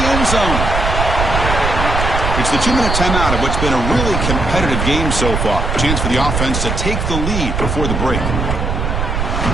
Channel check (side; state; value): right; noise; rumble, 1 dB below the sound